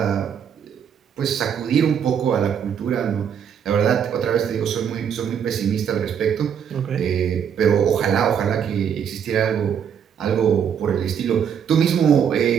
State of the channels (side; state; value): left; quieter; 8.0 dB